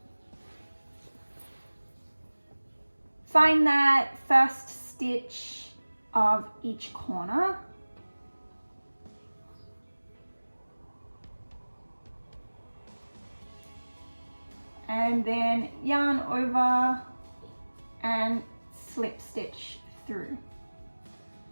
find that first stitch of each corner. And then yarn over and slip stitch through.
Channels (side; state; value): both; inverted; correlation -1.00